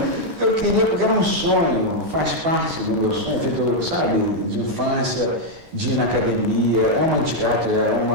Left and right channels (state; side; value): late; left; 12 ms